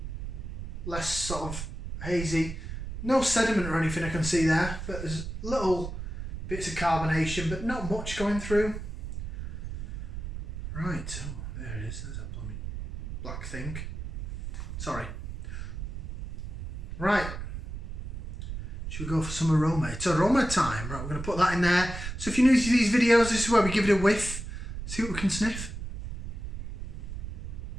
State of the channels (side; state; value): right; noise; rumble, 6 dB below the sound